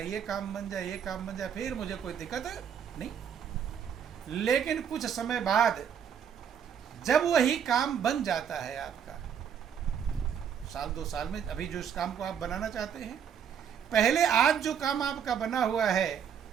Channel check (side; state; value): left; quieter; 8.0 dB